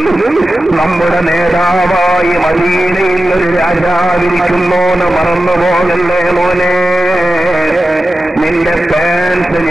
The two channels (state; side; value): normal; both; correlation 0.93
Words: നമ്മുടെ നേതാവായി മദീനയിൽ ഒരു രാജാവിരിക്കുന്നോന്ന് മറന്നുപോകല്ലേ മോനെ. നിന്റെ പാൻസ്